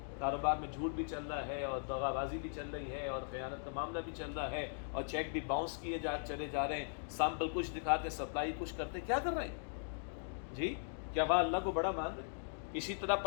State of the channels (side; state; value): right; silent; digital silence